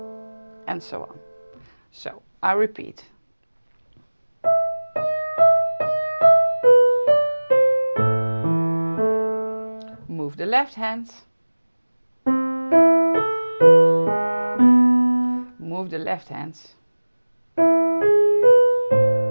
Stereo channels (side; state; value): both; inverted; correlation -1.00